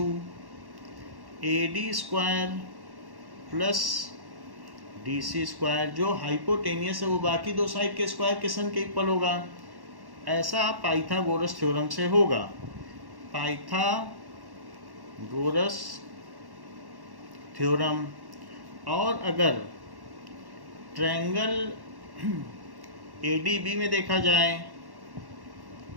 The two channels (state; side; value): late; left; 1.1 ms